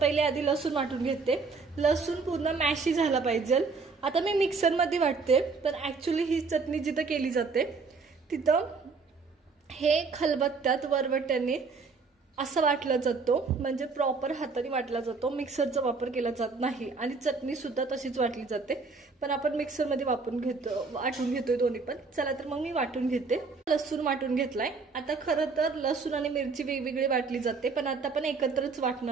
आधी लसूण वाटून घेते। लसूण पूर्ण मॅशी झाला पाहिजे। आता मी मिक्सर मध्ये वाटते, तर ऍक्च्युली ही चटणी जिथं केली जाते तिथं हे खलबत्त्यात वरवट्याने असं वाटला जातो, म्हणजे प्रॉपर हाताने वाटला जातो। मिक्सरचा वापर केला जात नाही आणि चटणी सुद्धा तशीच वाटली जाते, पण आपण मिक्सर मध्ये वाटून घेतोय दोन्ही पण। चला तर मग मी वाटून घेते। लसूण वाटून घेतलाय। आता खरं तर लसूण आणि मिरची वेगवेगळी वाटली जाते, पण आता आपण एकत्रच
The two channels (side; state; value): left; quieter; 4.5 dB